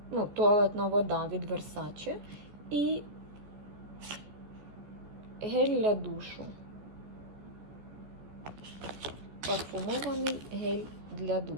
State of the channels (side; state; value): left; late; 14 ms